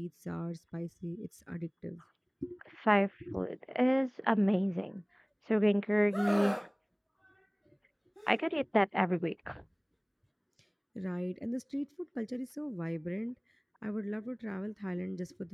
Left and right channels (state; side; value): identical; both; correlation 1.00